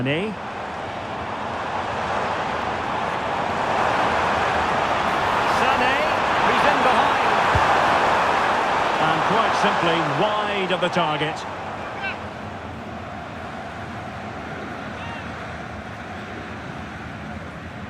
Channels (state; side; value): identical; both; correlation 1.00